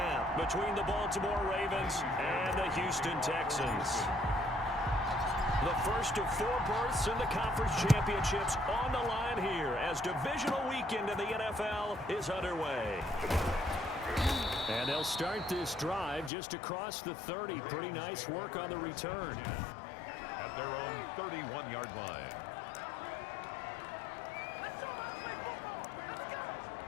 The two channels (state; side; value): drops out; right; at 16.3 s